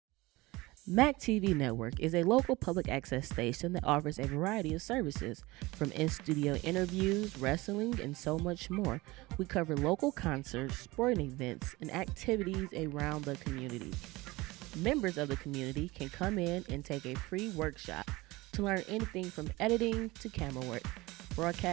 MAC TV Network is a local public access station that offers a variety of services, from in-studio interviews, wrestling, and so much more. We cover local concerts, sporting events, and activities around the community. Members of the community can come in and take a free workshop to learn anything from editing to camera work.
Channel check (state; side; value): quieter; left; 21.2 dB